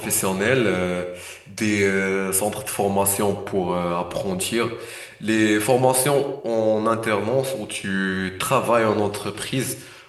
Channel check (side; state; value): both; identical; correlation 1.00